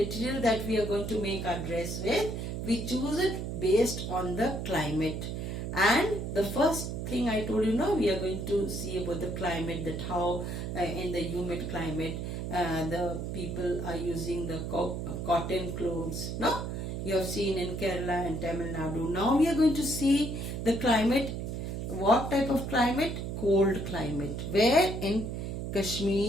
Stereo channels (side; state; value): right; noise; hum, 4 dB below the sound